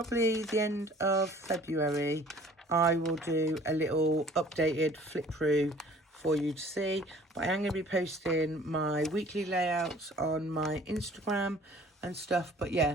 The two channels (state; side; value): normal; both; correlation 0.52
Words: the end of February, I will do a little updated flip through for you to see. But I am going to be posting my weekly layouts on my Instagram and stuff. But